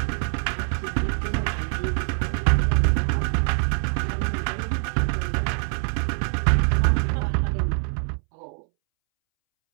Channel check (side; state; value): left; silent; 63 dB below the other